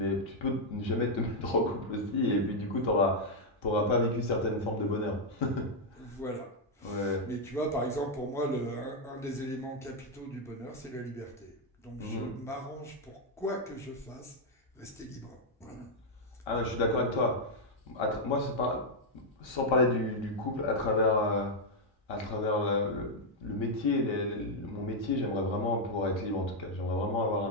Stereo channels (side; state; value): both; normal; correlation -0.01